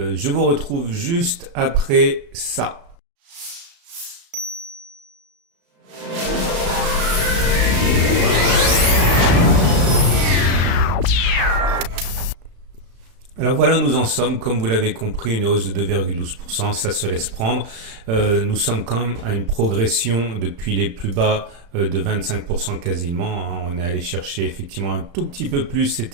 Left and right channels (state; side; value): late; left; 35 ms